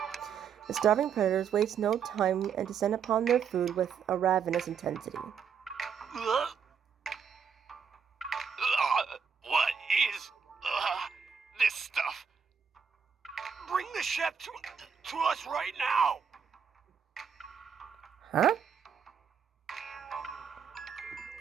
The starving predators waste no time and descend upon their food with a ravenous intensity. What is this stuff? Bring the chef to us right now! Huh?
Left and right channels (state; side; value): quieter; left; 6.8 dB